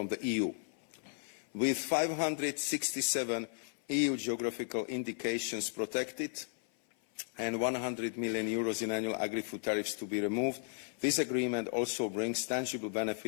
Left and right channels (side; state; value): right; silent; 54 dB below the other